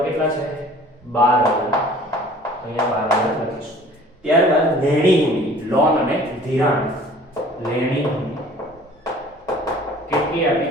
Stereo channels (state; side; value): normal; both; correlation 0.49